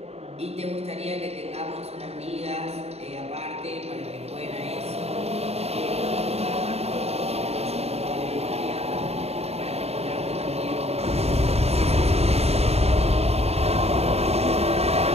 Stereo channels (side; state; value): left; late; 0.30 ms